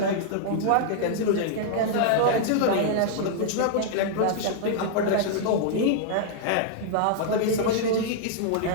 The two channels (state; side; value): different; both; correlation -0.01